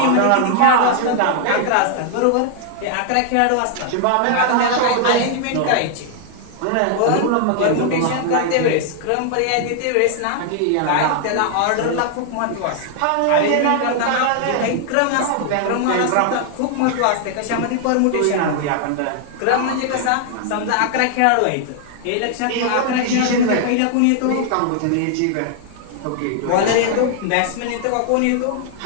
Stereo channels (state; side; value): different; both; correlation 0.00